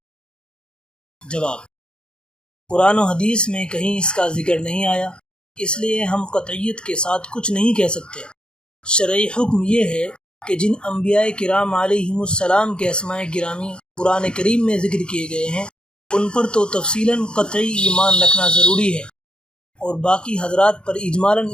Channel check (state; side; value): late; right; 0.051 ms